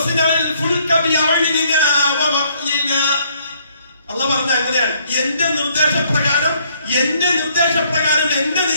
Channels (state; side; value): inverted; both; correlation -0.66